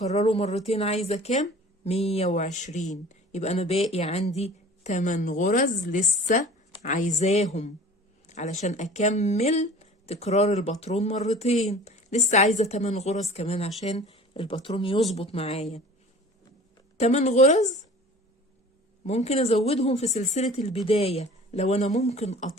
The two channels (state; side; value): normal; both; correlation 0.43